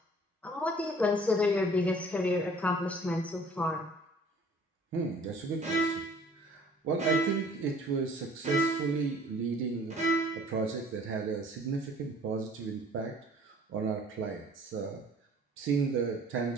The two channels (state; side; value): normal; both; correlation 0.52